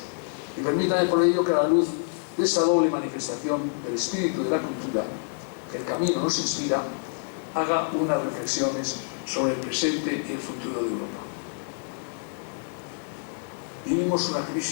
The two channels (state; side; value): silent; right; 60 dB below the other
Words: Y permítame por ello que a la luz de esta doble manifestación del espíritu de la cultura, que el camino nos inspira, haga unas reflexiones sobre el presente y el futuro de Europa. Vivimos